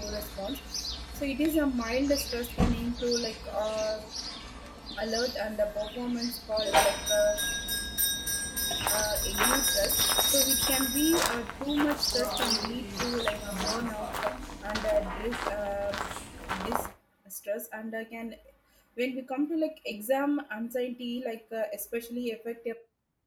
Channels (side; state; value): both; identical; correlation 1.00